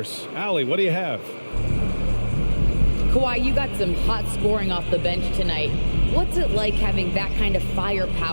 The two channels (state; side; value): inverted; both; correlation -1.00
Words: Allie, what do you have? Kawhi, you got some hot scoring off the bench tonight. What's it like having that kind of